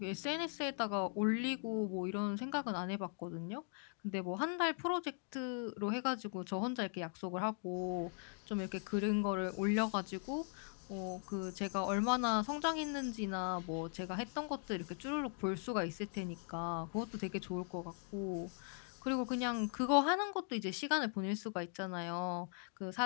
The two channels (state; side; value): silent; right; 51 dB below the other